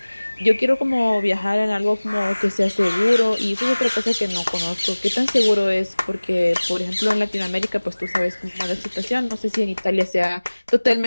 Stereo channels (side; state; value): both; inverted; correlation -1.00